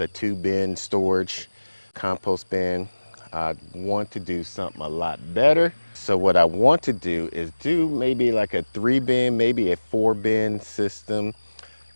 a 2-bin storage compost bin. I want to do something a lot better. So what I want to do is do maybe like a 3-bin, maybe a 4-bin system.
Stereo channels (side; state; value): both; inverted; correlation -1.00